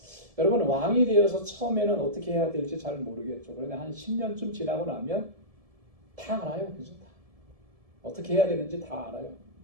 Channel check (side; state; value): left; late; 1.7 ms